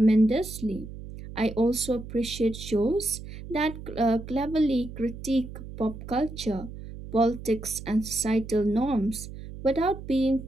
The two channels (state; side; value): noise; right; hum, 12 dB below the sound